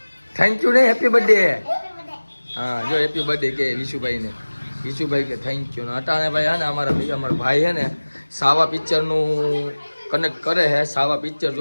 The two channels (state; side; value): inverted; both; correlation -1.00